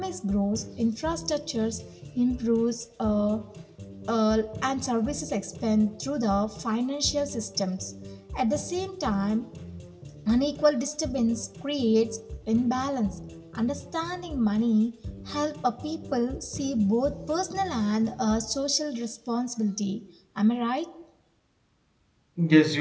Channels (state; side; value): identical; both; correlation 1.00